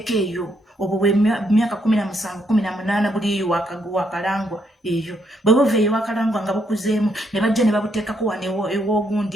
eyo obwo bwe myaka 17 18 buli eyo wakalangwa eyo bwe buva eyo wakalangwa nga bukuzeemu ne bajja ne babuteekako wano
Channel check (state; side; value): normal; both; correlation 0.74